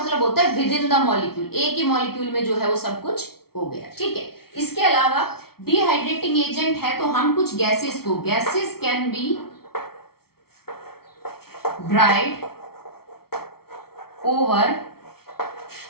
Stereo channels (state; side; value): late; right; 0.94 ms